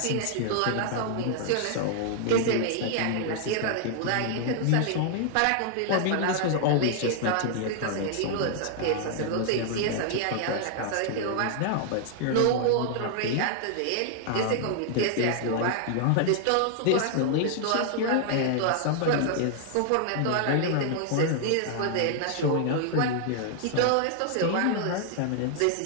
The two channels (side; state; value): both; different; correlation 0.00